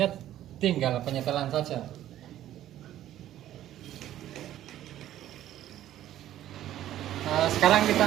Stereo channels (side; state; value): left; quieter; 12.7 dB